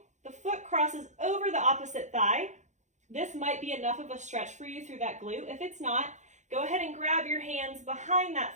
the foot crosses over the opposite thigh. This might be enough of a stretch for you through that glute. If it's not, go ahead and grab your hands behind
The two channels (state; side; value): late; left; 0.34 ms